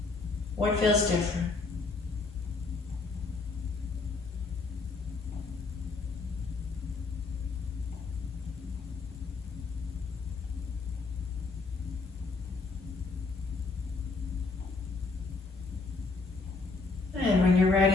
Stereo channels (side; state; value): right; quieter; 4.0 dB